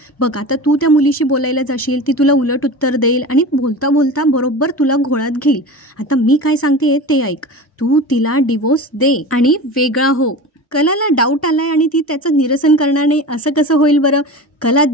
बघ, आता तू त्या मुलीशी बोलायला जाशील, ती तुला उलट उत्तर देईल आणि बोलता बोलता बरोबर तुला घोळात घेईल. आता मी काय सांगते ते ऐक, तू तिला डिवोर्स दे आणि वेगळा हो. कलाला डाऊट आलाय आणि ती त्याचं निरसन करणार नाही. असं कसं होईल बरं? कला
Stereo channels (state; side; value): normal; both; correlation 0.32